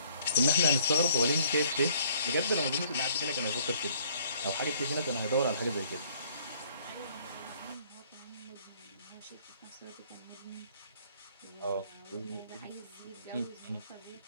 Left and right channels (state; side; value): inverted; both; correlation -0.60